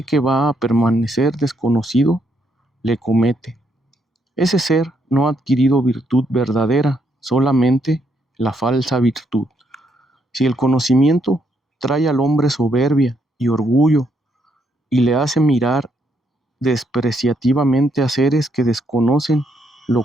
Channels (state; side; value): normal; both; correlation 0.75